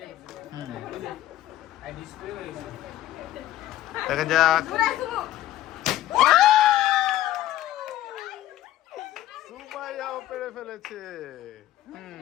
দেখা যাক। সুমাইয়াও পেরে ফেলেছে।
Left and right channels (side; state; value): right; quieter; 14.1 dB